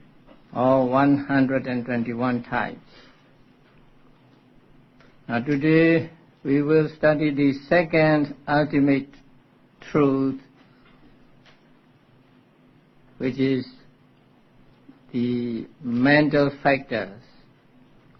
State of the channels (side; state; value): both; identical; correlation 1.00